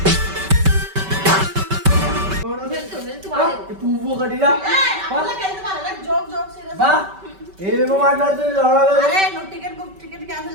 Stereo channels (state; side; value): late; left; 5.2 ms